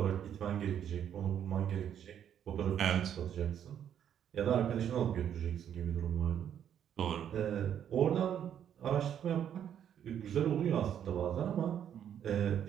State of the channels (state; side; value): quieter; left; 9.4 dB